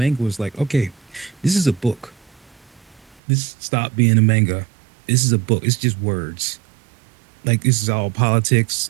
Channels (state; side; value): drops out; left; at 3.2 s